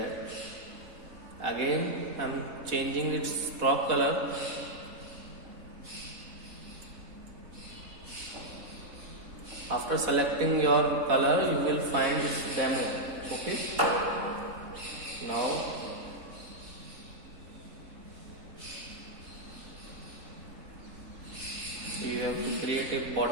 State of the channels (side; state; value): left; late; 3.7 ms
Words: Again I am changing its stroke color. After selecting your color, you will find this demo. Okay, now you have to create a